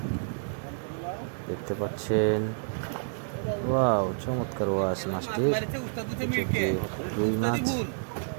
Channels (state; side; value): silent; left; digital silence